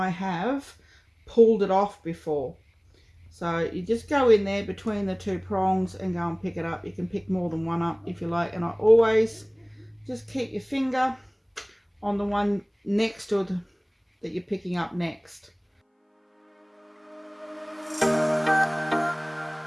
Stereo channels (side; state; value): both; identical; correlation 1.00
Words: have pulled it off before. So you just go in there between the two prongs and go and pick it up. You can pick more than one up if you like, and I always just keep your finger on the one next to the, that you're picking up next.